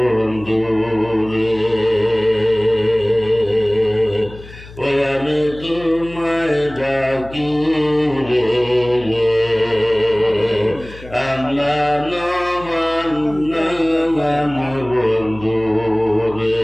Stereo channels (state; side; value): noise; left; hum, 18 dB below the sound